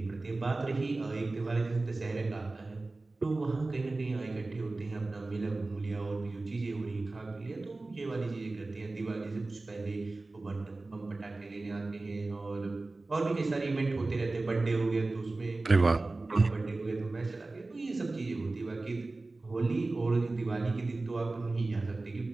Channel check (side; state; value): left; quieter; 3.2 dB